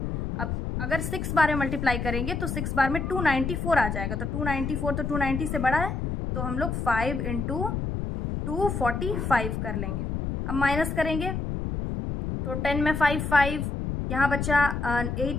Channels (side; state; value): left; noise; rumble, 3 dB below the sound